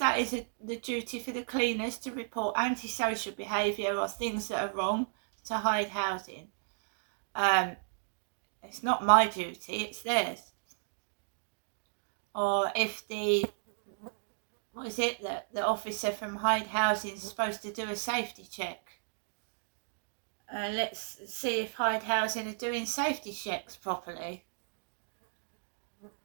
is the duty for the cleaners, to report antisocial behaviour or things that are wrong to Hyde Housing. It's not my duty, it's theirs. Or if the officer from Hyde Housing is supposed to do a safety check. Let's see if Hyde Housing are doing safety checks properly.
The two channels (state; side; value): silent; left; digital silence